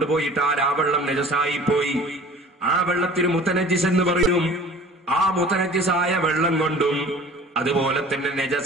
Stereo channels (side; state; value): both; normal; correlation 0.45